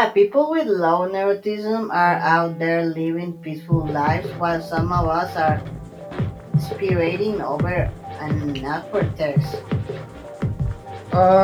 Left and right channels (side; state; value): both; identical; correlation 1.00